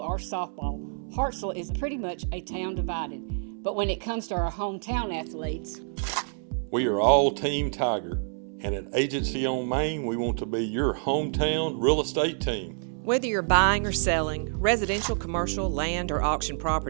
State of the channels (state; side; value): silent; left; 58 dB below the other